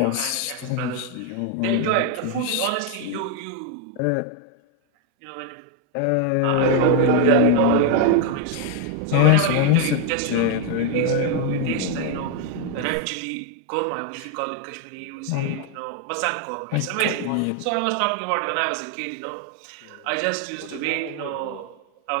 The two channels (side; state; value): both; different; correlation 0.01